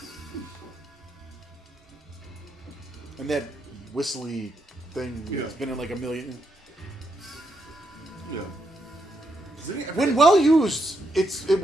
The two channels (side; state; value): both; normal; correlation 0.80